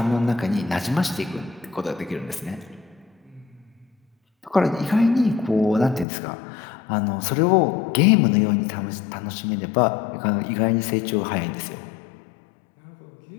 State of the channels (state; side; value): drops out; right; at 6.1 s